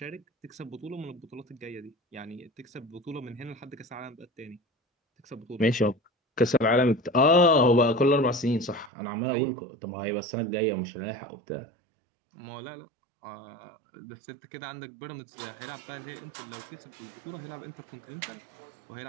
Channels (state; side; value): drops out; left; at 8.9 s